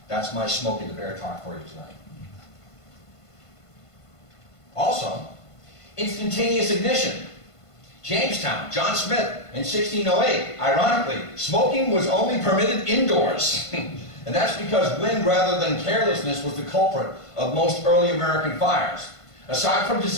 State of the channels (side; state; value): right; late; 1.5 ms